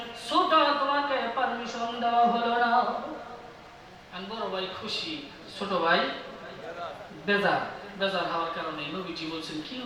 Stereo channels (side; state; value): both; identical; correlation 1.00